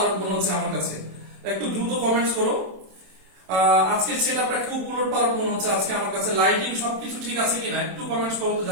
মনে হচ্ছে আমার কাছে। একটু দ্রুত কমেন্টস করো। আজকে সেটআপটা খুব উলট পালট মনে হচ্ছে আজকে আমার কাছে। লাইটিং সবকিছু ঠিক আছে কিনা একটু কমেন্টস করো তো,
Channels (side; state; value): left; late; 27 ms